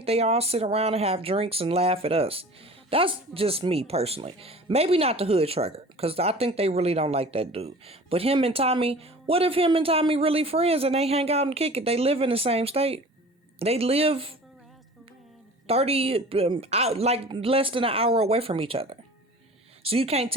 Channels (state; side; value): normal; both; correlation 0.42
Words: they all sit around and have drinks and laugh at us. That's just me personally. Maybe not the hood trucker, because I think they really don't like that dude. But him and Tommy, what if him and Tommy really friends and they hang out and kick it? They live in the same state. They live 30, out, like less than an hour away from each other. So you can't